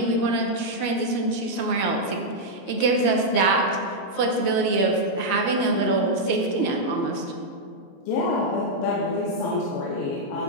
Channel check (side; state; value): right; late; 21 ms